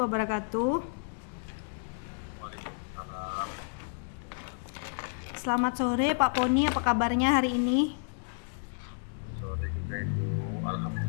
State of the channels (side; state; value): right; silent; digital silence